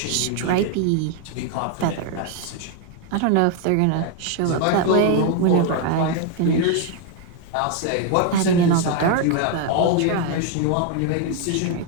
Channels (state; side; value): different; both; correlation 0.01